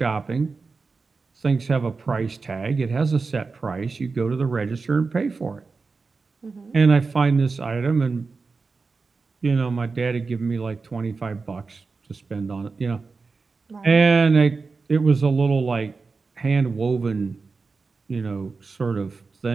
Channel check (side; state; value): left; quieter; 4.3 dB